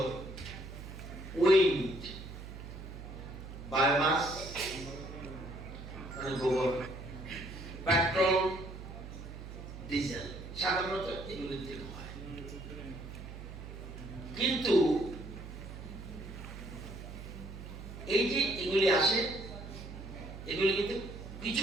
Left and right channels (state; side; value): noise; right; hum, 11 dB below the sound